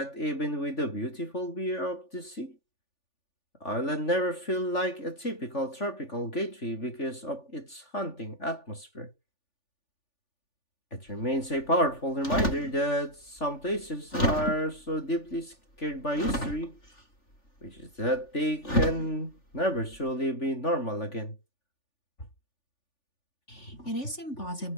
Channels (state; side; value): late; right; 3.4 ms